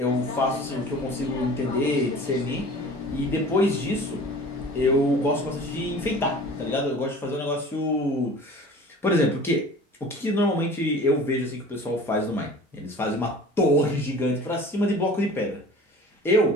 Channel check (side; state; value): both; normal; correlation 0.42